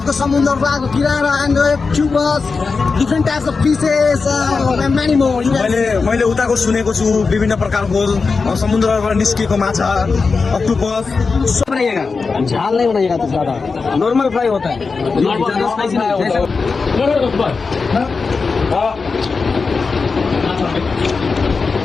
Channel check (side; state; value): right; quieter; 4.6 dB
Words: समुद्र रातको किनारा एन्ड क्युबस different types of fishes many more. मैले उताको सुनेको छु विभिन्न प्रकारको समुद्रबाट निस्किएको माछा अक्टोपस सब बनाइएगा, झाल नहीं बनाइएगा तो ज्यादा नॉर्मल फ्राई होता है।